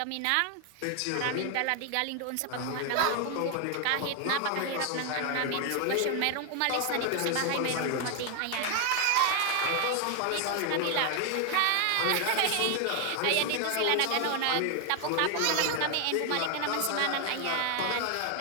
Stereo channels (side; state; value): both; different; correlation 0.01